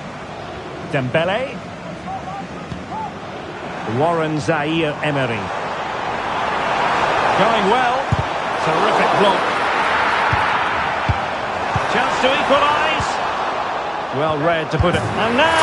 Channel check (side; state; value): both; identical; correlation 1.00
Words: Dembele. Warren Zaire Emery. Going well. Terrific block. Chance to equalise. Well read to put it. And